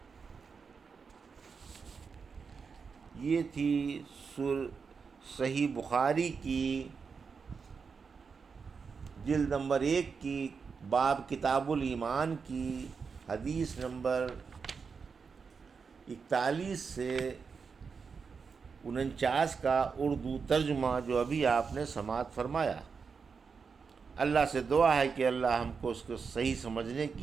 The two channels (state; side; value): quieter; left; 5.5 dB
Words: یہ تھی صحیح بخاری کی جلد نمبر 1 کی باب کتاب الایمان کی حدیث نمبر 41 سے 49 کا اردو ترجمہ جو ابھی آپ نے سماعت فرمایا۔ اللہ سے دعا ہے کہ اللہ ہم کو اس کو صحیح سمجھنے